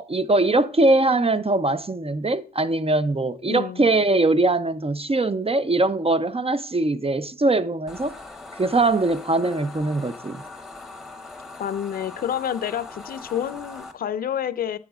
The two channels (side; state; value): both; normal; correlation 0.53